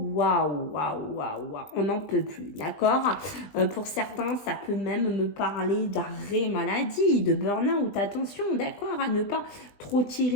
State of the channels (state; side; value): late; right; 20 ms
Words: on n'en peut plus, d'accord. Pour certains, ça peut même me parler d'arrêt maladie, de burn-out. Attention, d'accord, à ne pas trop